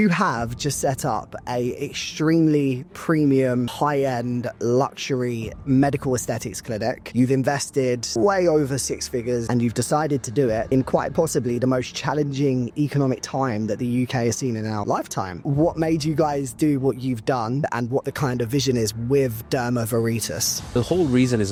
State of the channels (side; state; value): both; identical; correlation 1.00